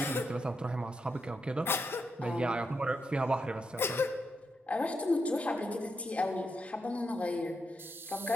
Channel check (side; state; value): both; normal; correlation 0.83